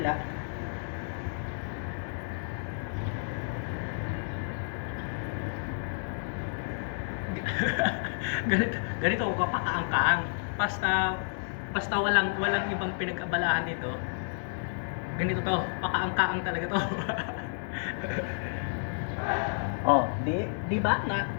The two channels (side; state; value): right; silent; digital silence